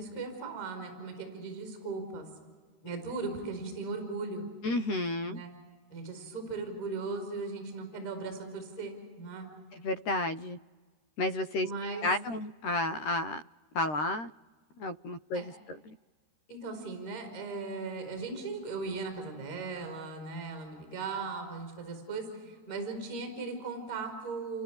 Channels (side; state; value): right; late; 13 ms